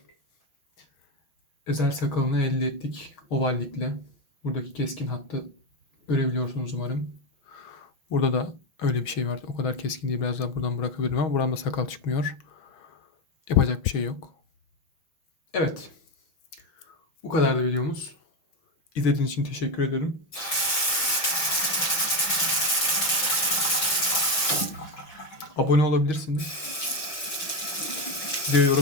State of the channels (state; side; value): late; right; 5.9 ms